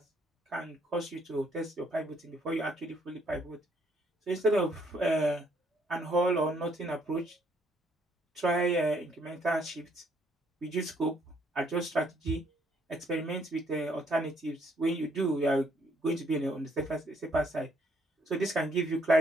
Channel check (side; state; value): both; normal; correlation 0.68